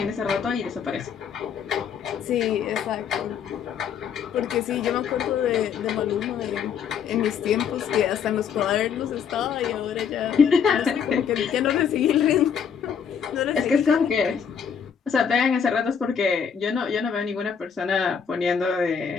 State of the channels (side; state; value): right; quieter; 7.3 dB